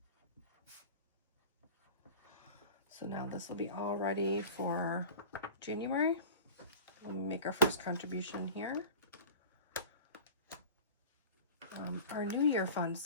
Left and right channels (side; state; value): both; inverted; correlation -0.38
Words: So now this will be all ready for January. We'll make our first contribution here. Our New Year fund.